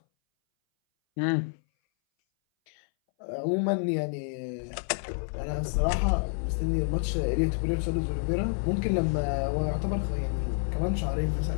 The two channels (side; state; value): right; silent; 59 dB below the other